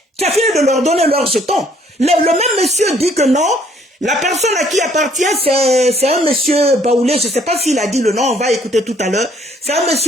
Tu as fini de leur donner leurs jetons. Le même monsieur dit que non. La personne à qui appartient, c'est un monsieur Baoulé. Je ne sais pas s'il a dit le nom, on va écouter tout à l'heure. C'est un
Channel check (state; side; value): normal; both; correlation 0.63